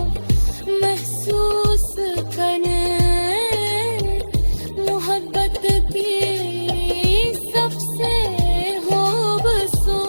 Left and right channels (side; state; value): both; inverted; correlation -1.00